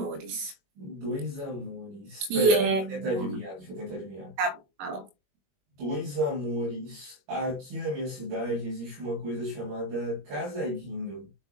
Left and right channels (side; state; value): left; late; 21 ms